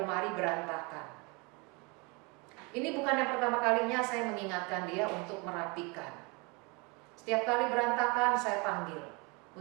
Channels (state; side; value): quieter; left; 29.2 dB